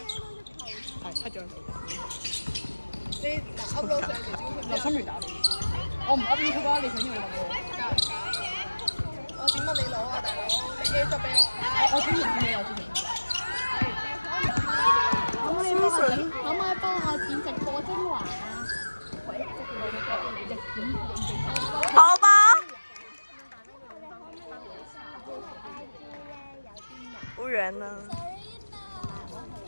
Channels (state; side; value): inverted; both; correlation -1.00